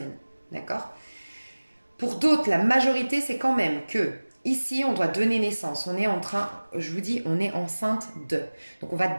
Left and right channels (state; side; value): inverted; both; correlation -1.00